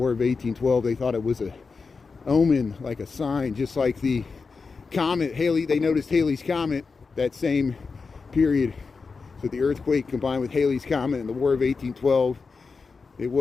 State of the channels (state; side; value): quieter; right; 4.7 dB